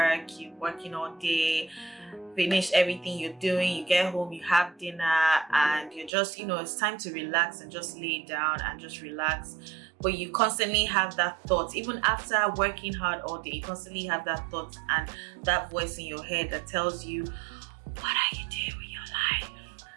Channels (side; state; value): left; drops out; at 6.1 s